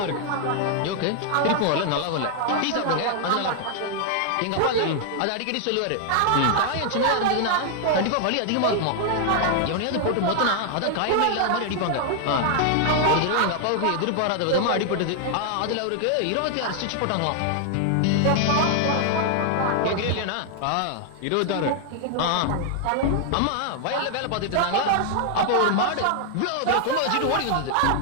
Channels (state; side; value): different; both; correlation 0.00